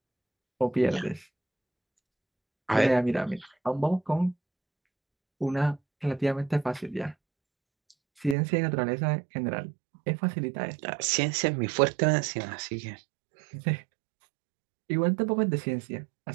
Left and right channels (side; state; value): left; drops out; at 8.3 s